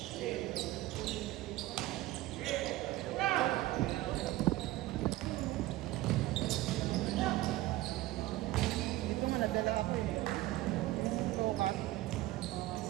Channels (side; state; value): left; quieter; 16.8 dB